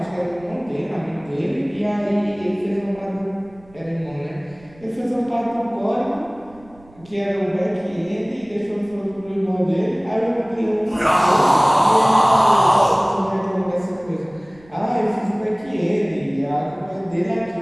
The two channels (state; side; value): noise; right; rumble, 25 dB below the sound